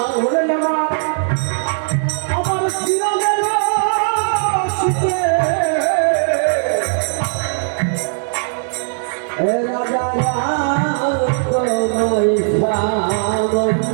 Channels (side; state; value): left; silent; digital silence